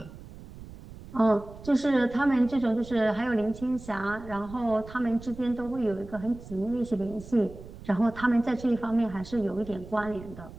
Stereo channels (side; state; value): right; noise; rumble, 16 dB below the sound